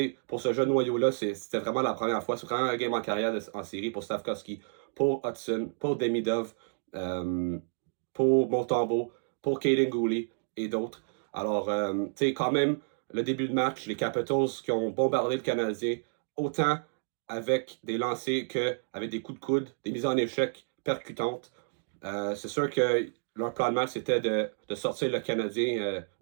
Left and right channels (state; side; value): silent; left; digital silence